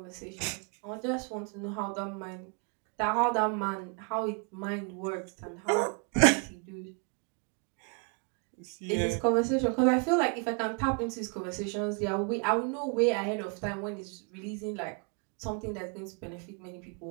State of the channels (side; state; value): left; quieter; 37.2 dB